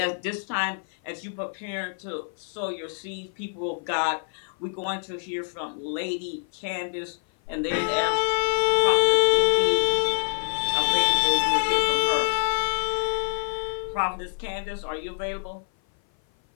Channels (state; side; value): silent; right; 56 dB below the other